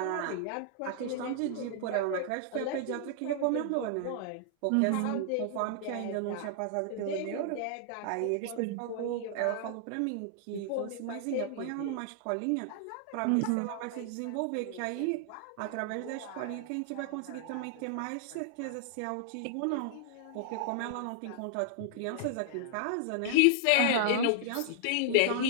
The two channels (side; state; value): both; different; correlation -0.01